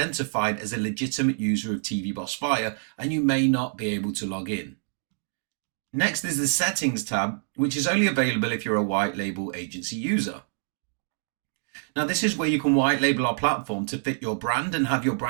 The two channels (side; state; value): left; silent; 60 dB below the other